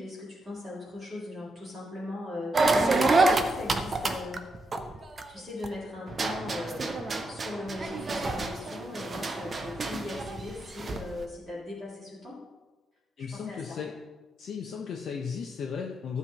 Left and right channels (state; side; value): normal; both; correlation 0.83